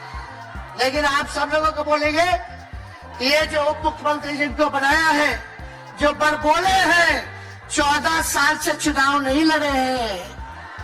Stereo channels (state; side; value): identical; both; correlation 1.00